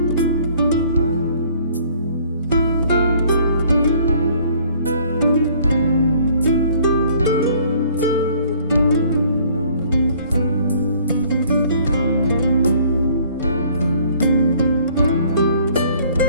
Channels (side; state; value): both; inverted; correlation -0.58